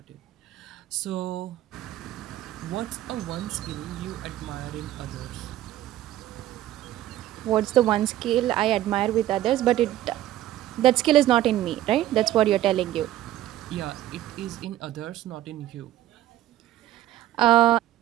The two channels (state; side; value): quieter; left; 13.7 dB